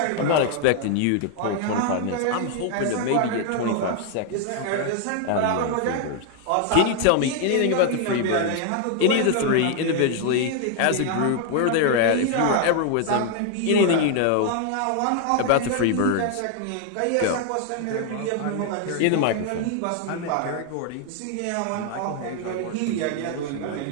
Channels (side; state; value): both; different; correlation 0.00